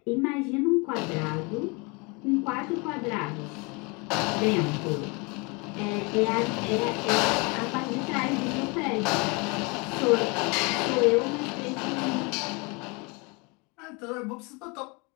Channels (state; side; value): quieter; right; 29.3 dB